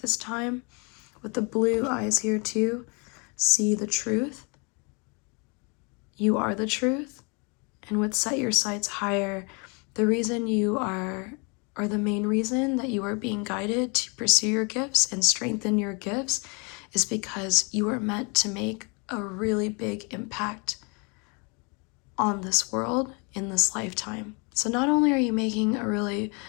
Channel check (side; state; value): right; quieter; 32.3 dB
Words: time. With the blue eyes here too, see the truth. You are the truth. And with set your sights higher, the reason you are, or the main reason that you are being guided to pursue your gifts and strengthen your gifts is because you are meant to make a really big impact on this world in this lifetime. So not only are you making a really